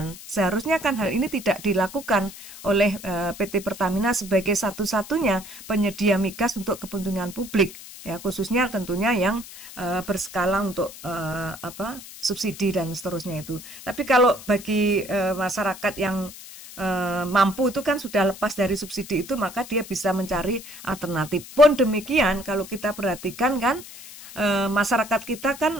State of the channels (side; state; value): left; noise; hiss, 15 dB below the sound